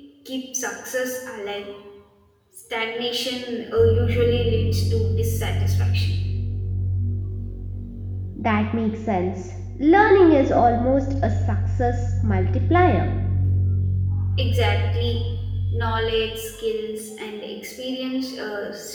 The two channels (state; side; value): identical; both; correlation 1.00